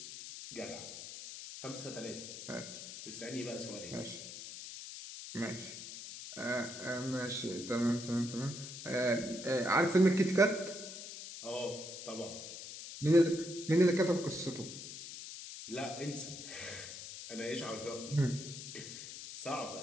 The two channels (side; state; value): left; noise; hiss, 10 dB below the sound